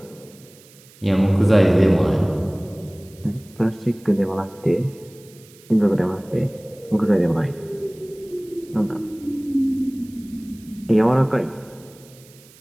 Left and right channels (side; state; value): right; noise; hiss, 25 dB below the sound